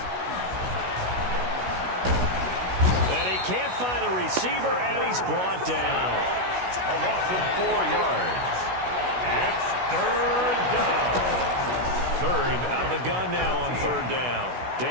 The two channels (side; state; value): left; late; 16 ms